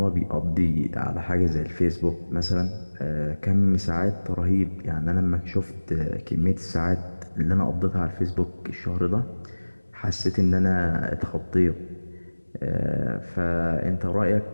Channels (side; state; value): both; inverted; correlation -1.00